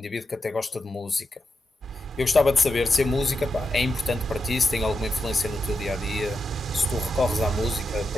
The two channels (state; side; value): normal; both; correlation 0.87